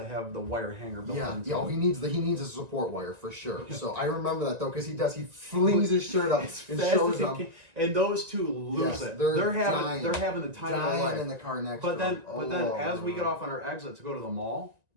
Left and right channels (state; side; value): late; left; 1.9 ms